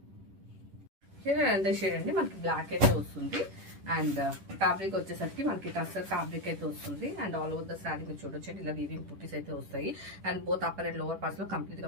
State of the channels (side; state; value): left; late; 10 ms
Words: అంతే షేడ్ అండి, మనకి బ్లాక్ అయితే వస్తుంది. అండ్ ఫ్యాబ్రిక్ వచ్చేసరికి మనకి టస్సర్ ఫ్యాబ్రిక్ అయితే వస్తుంది. And all over the saree మీరు చూడొచ్చు ఇలా వీవింగ్ బూటీస్ అయితే వస్తాయి. And both upper and lower parts లో కంప్లీట్